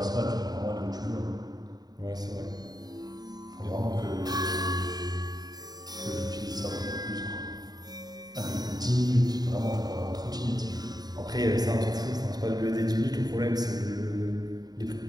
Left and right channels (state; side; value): late; left; 0.19 ms